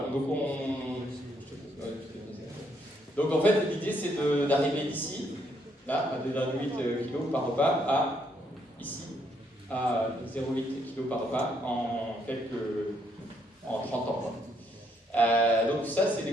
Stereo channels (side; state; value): both; normal; correlation 0.72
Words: Donc en fait, l'idée, c'est d'arriver d'ici, là, à 2,8 kg par repas, à ici, à 0,8 kg par repas en 30 ans. Donc ça, c'est des